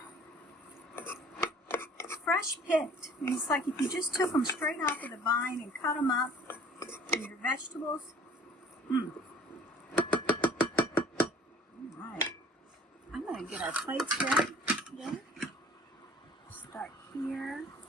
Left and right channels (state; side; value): normal; both; correlation 0.51